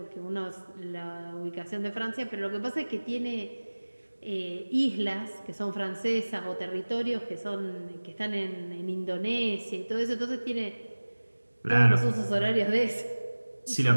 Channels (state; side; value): inverted; both; correlation -1.00